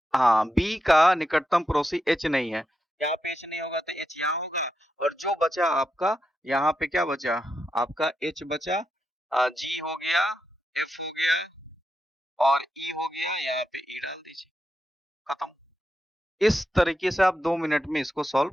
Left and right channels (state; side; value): normal; both; correlation 0.86